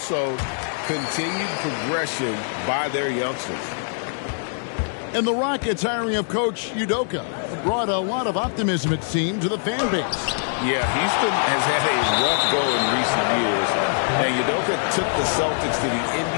continued progression by their youngsters. And the Rockets hiring of Coach Udoka brought a lot of optimism, it seemed, to the fan base. Yeah, Houston has had a rough go in recent years. And Udoka took the Celtics to the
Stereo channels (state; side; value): silent; right; digital silence